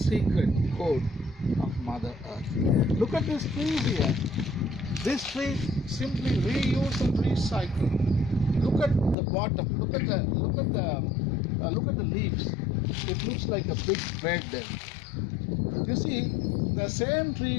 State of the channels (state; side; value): drops out; right; at 9.2 s